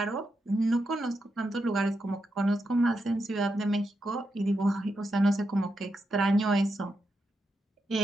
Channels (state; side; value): normal; both; correlation 0.85